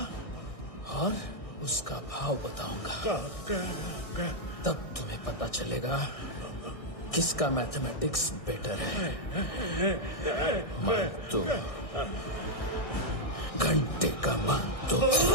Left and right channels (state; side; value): late; right; 1.6 ms